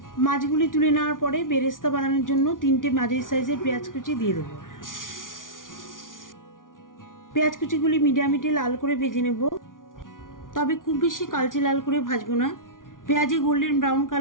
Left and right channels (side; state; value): right; late; 0.88 ms